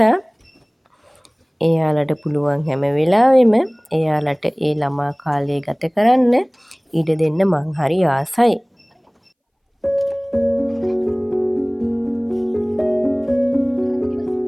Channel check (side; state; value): both; identical; correlation 1.00